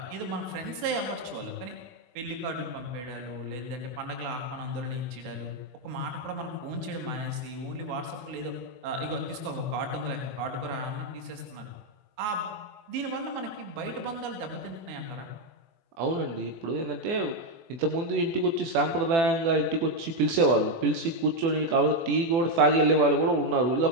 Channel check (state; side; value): late; left; 24 ms